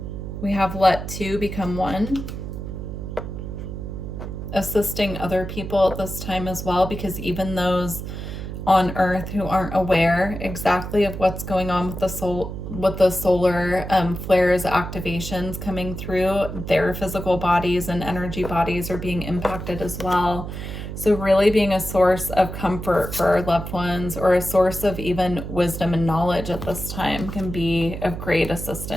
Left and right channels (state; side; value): noise; right; hum, 7 dB below the sound